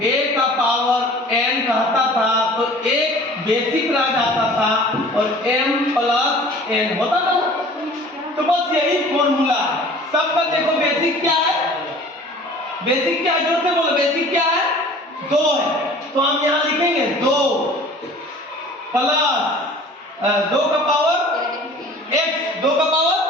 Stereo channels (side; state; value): both; normal; correlation 0.46